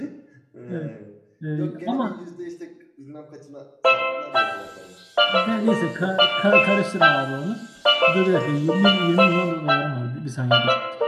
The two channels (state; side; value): identical; both; correlation 1.00